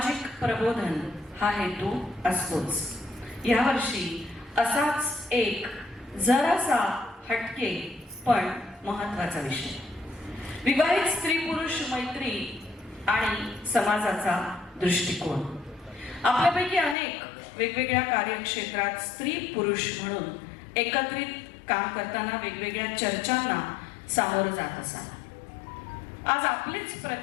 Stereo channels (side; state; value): right; drops out; at 16.9 s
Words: प्रबोधन हा हेतू असतोच. यावर्षी असाच एक जरासा हटके पण महत्वाचा विषय, विवाहित स्त्री पुरुष मैत्री आणि समाजाचा दृष्टिकोन. आपल्यापैकी अनेक वेगवेगळ्या कार्यक्षेत्रात स्त्री पुरुष म्हणून एकत्रित काम करताना वेगवेगळ्या चर्चांना सामोरं जात असाल. आज आपलेच